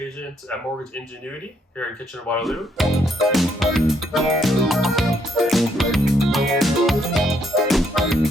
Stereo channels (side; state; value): both; normal; correlation 0.72